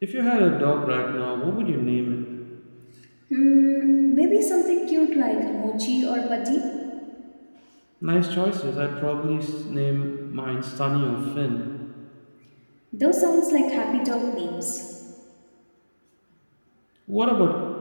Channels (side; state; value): both; inverted; correlation -1.00